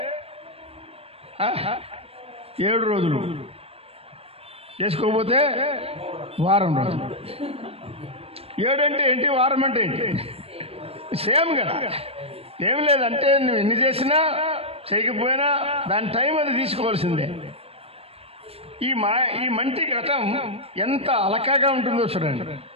7 రోజులు, చేసుకోకపోతే వారం రోజులు. 7 అంటే ఏంటి, వారం అంటే ఏంటి? సేమ్ కదా. ఏం లేదంటే నువ్వు ఎన్ని చేసినా చేయకపోయినా దాని టైం అది తీసుకోవాల్సిందే. ఈ మంటి ఘటం ఎంత అలకాగా ఉంటుందో చూడండి.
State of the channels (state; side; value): late; left; 0.28 ms